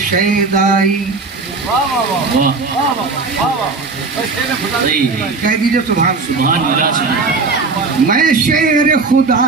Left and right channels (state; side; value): quieter; left; 4.2 dB